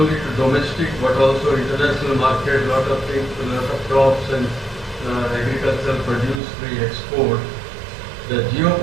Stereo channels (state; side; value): drops out; left; at 6.4 s